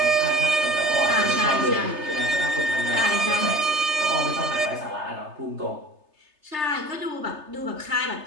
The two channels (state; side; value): late; left; 3.3 ms